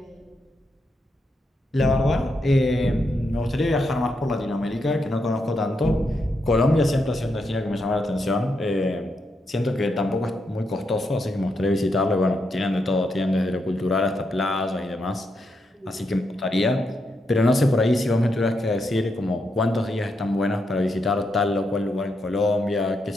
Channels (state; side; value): normal; both; correlation 0.82